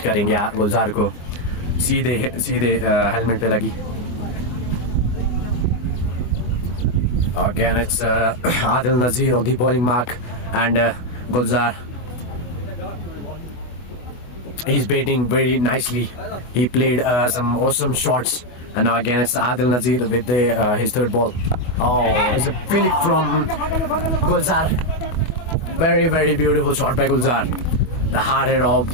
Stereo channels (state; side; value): late; right; 24 ms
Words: करेंगे गुलजार को, सीधे सीधे हेलमेट पे लगी। Again, it's Adil Nazir on the bowling mark, and Gulzar, he's batting very nicely. He played some awesome shots, and now again it's Adil Nazir with his third ball. Oh, it's a flick from Gulzar. Very, very beautiful shot by Gulzar. The hard hit of